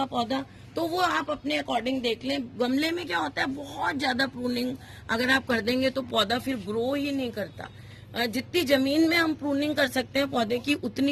पौधा, तो वो आप अपने अकॉर्डिंग देख लें। गमले में क्या होता है, बहुत ज्यादा प्रूनिंग अगर आप कर देंगे तो पौधा फिर ग्रो ही नहीं करता। जितनी जमीन में हम प्रूनिंग कर सकते हैं पौधे की,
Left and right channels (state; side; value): identical; both; correlation 1.00